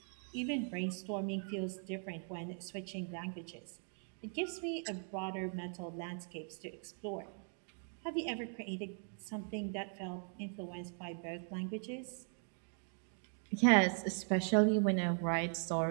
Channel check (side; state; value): left; silent; 51 dB below the other